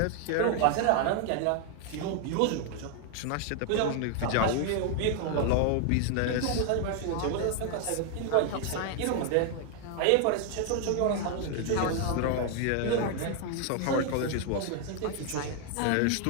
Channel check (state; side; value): different; both; correlation 0.00